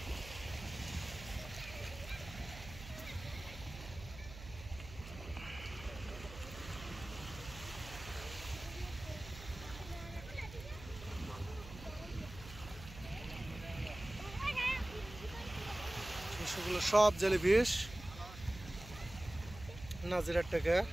সেগুলো সব জেলিফিশ নাজিরার টাকা।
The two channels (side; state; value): right; noise; hum, 14 dB below the sound